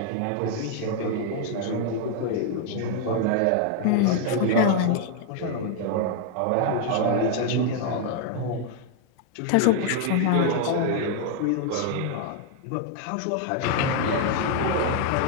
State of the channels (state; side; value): different; both; correlation 0.00